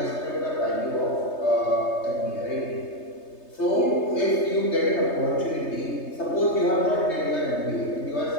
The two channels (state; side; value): late; right; 3.3 ms